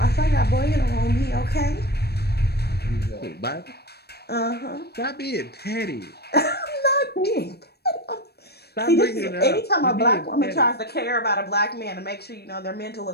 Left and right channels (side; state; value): right; late; 0.47 ms